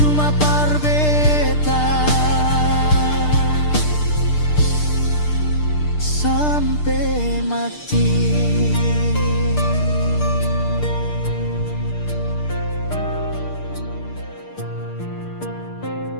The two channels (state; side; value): late; right; 6.7 ms